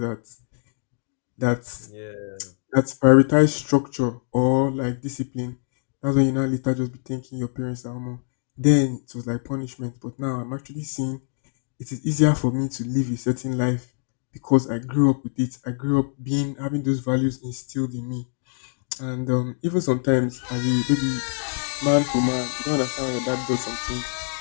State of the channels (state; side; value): silent; right; digital silence